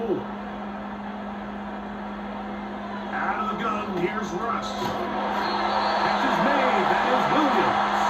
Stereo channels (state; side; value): identical; both; correlation 1.00